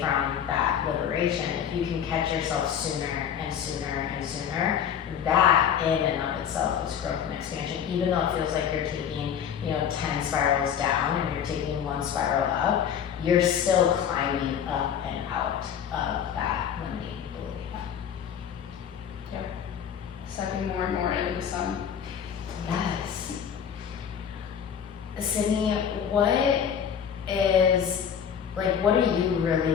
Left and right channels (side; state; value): right; quieter; 8.3 dB